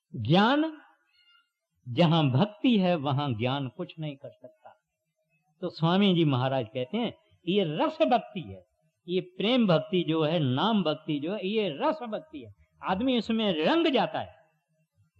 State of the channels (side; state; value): both; identical; correlation 1.00